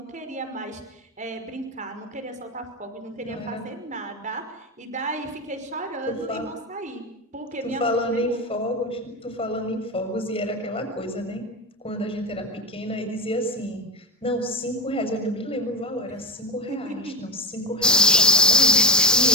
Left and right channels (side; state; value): both; normal; correlation 0.14